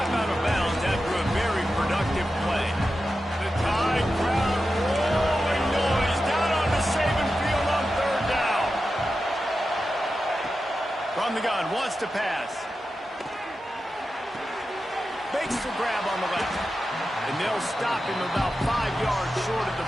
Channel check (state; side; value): normal; both; correlation 0.91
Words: out of bounds after a very productive play. The Tide crowd rolling noise down on the Saban field on 3rd down. From the gun, wants to pass. Makes the grab on the left. And they'll stop him about 5 yards short of